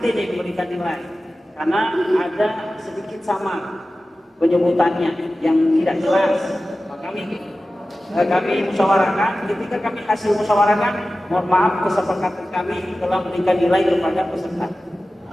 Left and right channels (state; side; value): normal; both; correlation 0.95